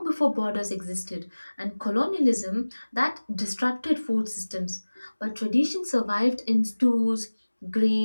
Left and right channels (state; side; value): inverted; both; correlation -1.00